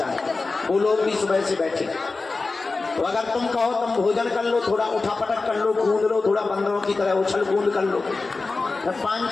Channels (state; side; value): quieter; right; 3.8 dB